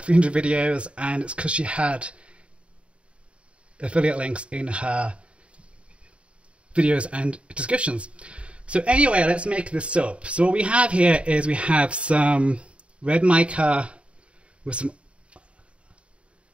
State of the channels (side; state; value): left; late; 0.060 ms